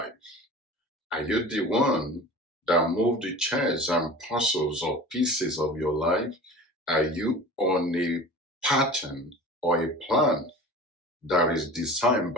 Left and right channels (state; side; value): normal; both; correlation 0.37